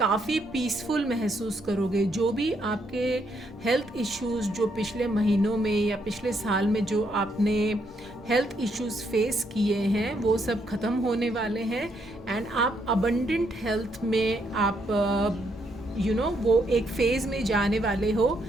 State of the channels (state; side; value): normal; both; correlation 0.75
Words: पीसफुल महसूस करोगे. जो भी आपके हेल्थ इश्यूज़ जो पिछले महीनों में या पिछले साल में जो आपने हेल्थ इश्यूज़ फेस किए हैं, वो सब ख़त्म होने वाले हैं एंड आप अबंडेंट हेल्थ में आप वो एक फेज़ में जाने वाले हो.